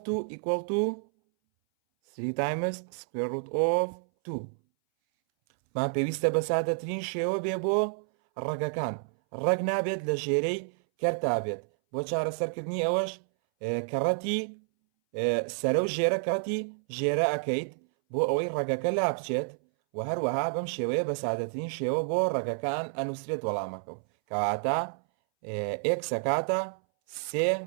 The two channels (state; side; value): silent; left; 58 dB below the other